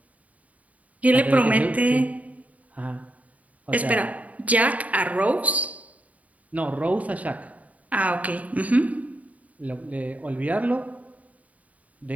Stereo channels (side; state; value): left; late; 0.070 ms